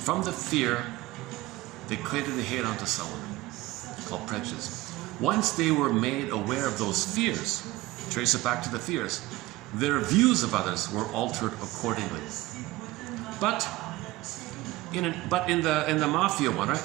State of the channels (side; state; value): left; quieter; 18.7 dB